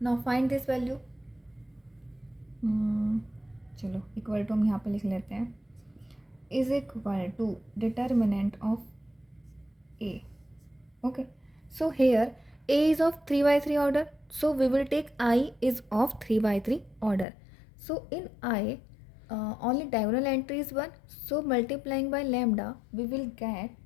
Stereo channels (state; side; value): drops out; right; at 17.2 s